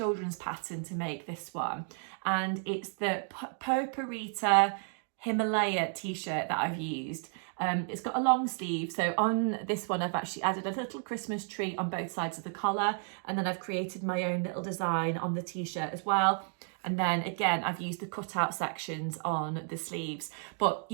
pattern to make this one, and it's the Poparita Himalaya t-shirt that I've used. It's got a long sleeve, so on this one I've actually added a little Christmas tree on both sides of the collar, and then I've created my own little design on the t-shirt as well. And then again, I've used the cutout sections on the sleeves. But,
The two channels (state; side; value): silent; left; 56 dB below the other